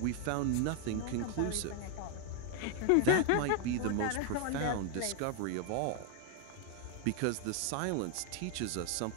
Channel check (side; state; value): both; different; correlation 0.00